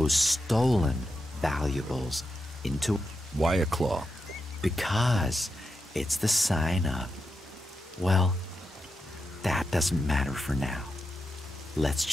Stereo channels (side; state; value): both; normal; correlation 0.87